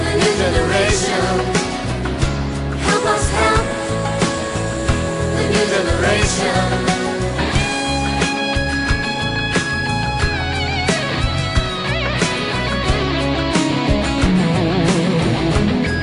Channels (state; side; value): identical; both; correlation 1.00